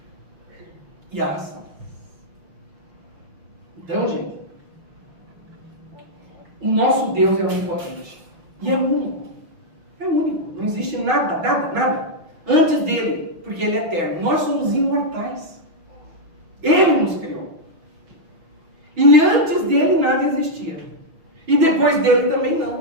e a ação. Então, gente, o nosso Deus é onipotente e é único. É único. Não existe nada antes dele, porque ele é eterno. Nós somos imortais. Ele nos criou. E antes dele nada existia. E depois dele também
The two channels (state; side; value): late; left; 6.2 ms